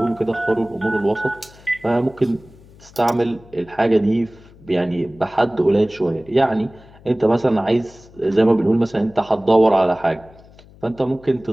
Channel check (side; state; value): left; noise; hum, 24 dB below the sound